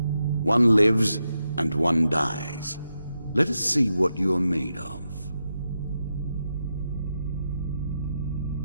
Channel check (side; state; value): both; inverted; correlation -0.86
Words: One lives and one dies. Let us see what you are made of.